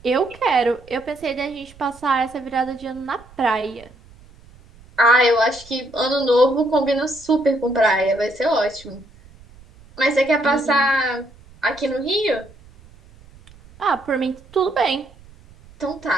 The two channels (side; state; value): right; noise; rumble, 24 dB below the sound